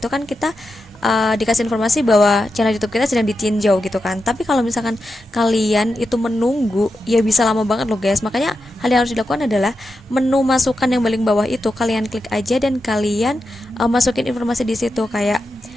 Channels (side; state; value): both; normal; correlation 0.89